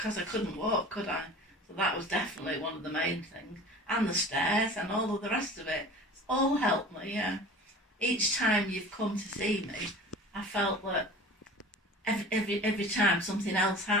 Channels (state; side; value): normal; both; correlation 0.40